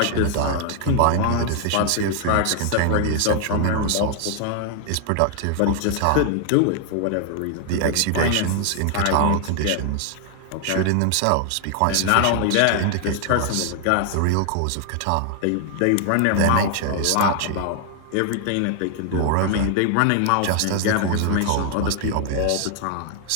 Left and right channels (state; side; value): different; both; correlation 0.00